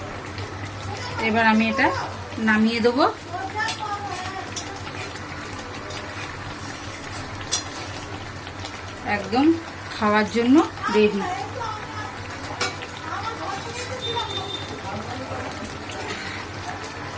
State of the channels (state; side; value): identical; both; correlation 1.00